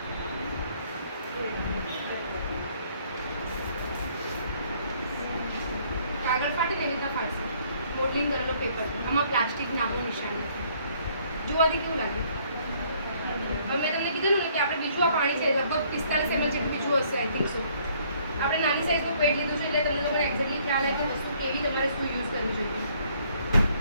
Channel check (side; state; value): both; inverted; correlation -0.63